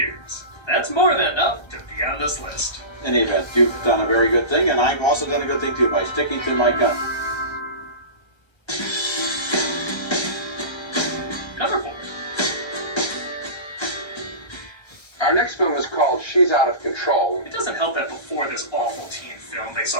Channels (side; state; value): right; late; 1.3 ms